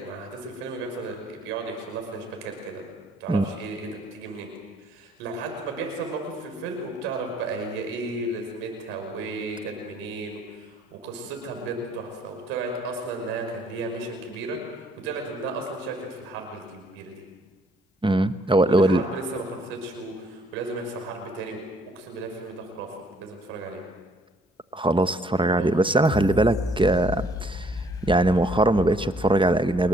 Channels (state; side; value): normal; both; correlation 0.63